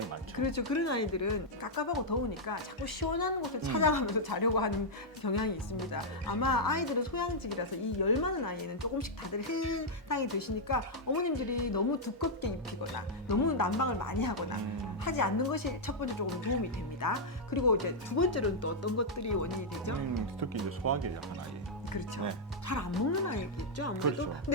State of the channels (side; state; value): both; normal; correlation -0.05